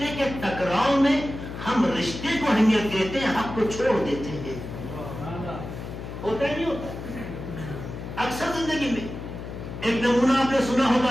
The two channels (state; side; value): noise; left; hum, 9 dB below the sound